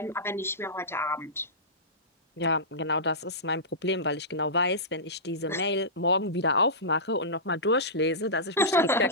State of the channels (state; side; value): normal; both; correlation -0.18